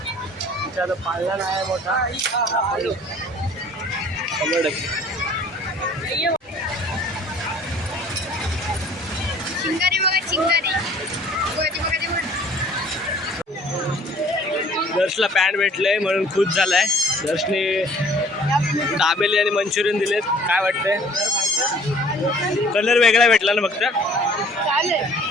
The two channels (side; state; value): both; normal; correlation 0.53